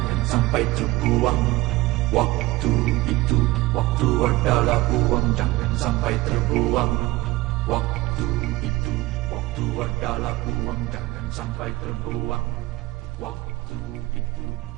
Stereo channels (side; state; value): left; quieter; 19.0 dB